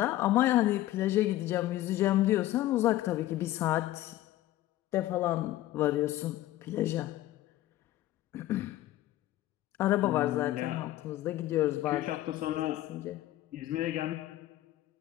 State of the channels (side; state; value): right; quieter; 14.9 dB